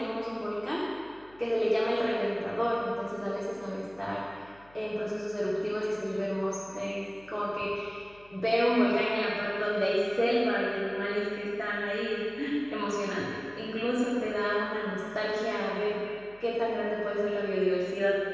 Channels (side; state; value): left; noise; hum, 26 dB below the sound